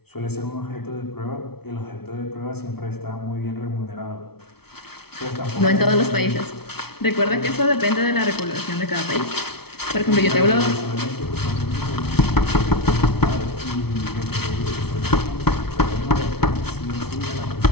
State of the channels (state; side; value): late; right; 0.96 ms